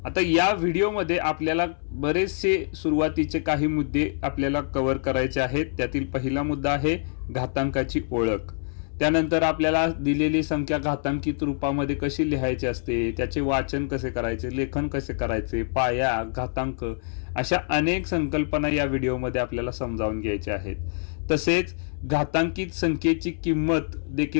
आता या व्हिडिओमध्ये आपल्याला बरेचसे सुरुवातीचे काही मुद्दे आपल्याला कव्हर करायचे आहेत। त्यातील पहिला मुद्दा आहे घातांकाची ओळख। त्यानंतर आपल्याला दिलेली संख्या घातांकित रूपामध्ये कशी लिहायची असते, त्याचे वाचन कसे करायचे, लेखन कसे करायचे, पाया, घातांक अशा अनेक संकल्पना या व्हिडिओमध्ये आपल्याला समजावून घ्यायच्या आहेत। तसेच घातांकित संख्येची किंमत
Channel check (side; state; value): right; silent; 61 dB below the other